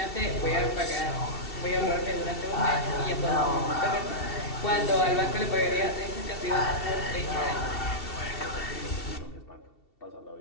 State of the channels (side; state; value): right; late; 2.7 ms